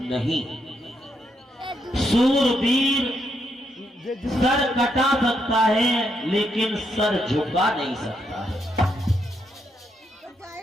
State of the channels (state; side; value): normal; both; correlation 0.78